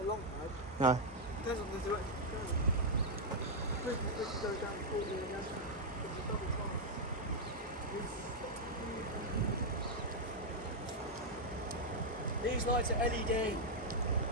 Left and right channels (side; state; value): both; normal; correlation -0.03